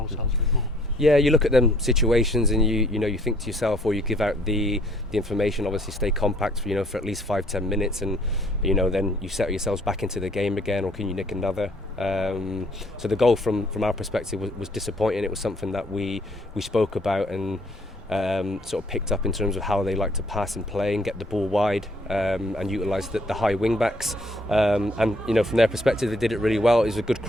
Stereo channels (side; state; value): both; normal; correlation 0.62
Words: a bit more. Yeah, you look at them situations and you think to yourself, or you give out the information, obviously stay compact for at least 5-10 minutes, and then you settle yourselves back into the game again, or can you nick another? So the goal from our perspective was disappointing. It was something that we spoke about and sort of picked up in terms of how they like to pass and play and get the ball wide, and utilise the high wing backs, and from their perspective they did it really well. It was a good